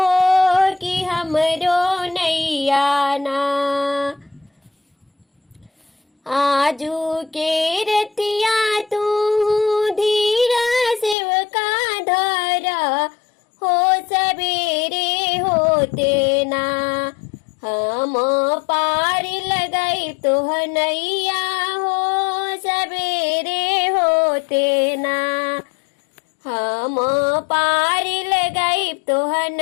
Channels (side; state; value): right; drops out; at 11.2 s